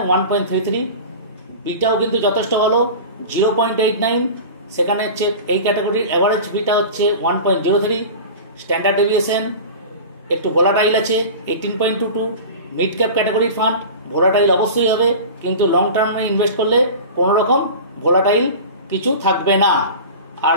1.33। বিটাও কিন্তু যথেষ্ট ভালো, 0.89। সেখানে হচ্ছে এই ক্যাটাগরির অ্যাভারেজ বিটা হচ্ছে 1.03। স্ট্যান্ডার্ড ডেভিয়েশন একটু ভোলাটাইল আছে 18.22। মিড ক্যাপ ক্যাটাগরির ফান্ড ভোলাটাইল অবশ্যই হবে, কিন্তু লং টার্মে ইনভেস্ট করলে কোনো রকম ভোলাটাইল কিছু থাকবে না। আর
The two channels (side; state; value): both; inverted; correlation -0.33